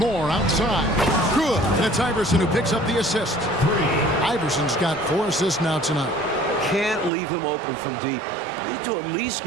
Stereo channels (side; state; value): left; drops out; at 7.1 s